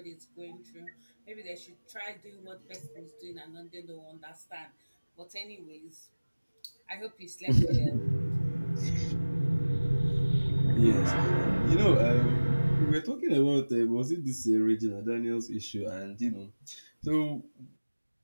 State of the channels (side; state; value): both; inverted; correlation -1.00